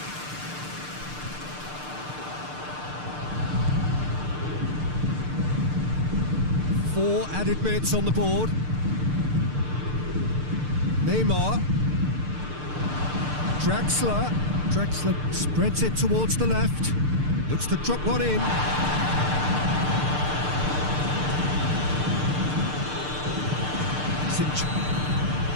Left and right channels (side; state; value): left; late; 6.7 ms